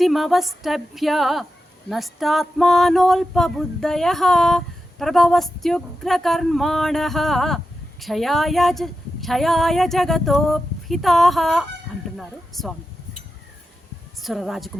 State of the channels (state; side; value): normal; both; correlation 0.90